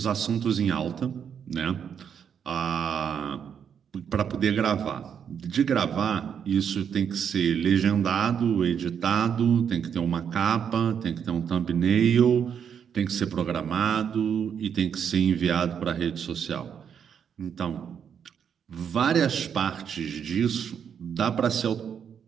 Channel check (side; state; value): left; quieter; 7.8 dB